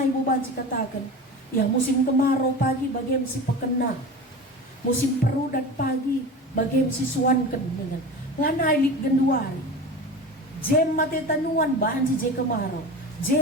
ibu baci katakan, ya musim kemarau pagi bagi si pekena. Musim perudat pagi bagi si suanken dengan lanai lik genduari. Jem mate tanuan banci je kemarau.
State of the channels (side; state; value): both; normal; correlation 0.31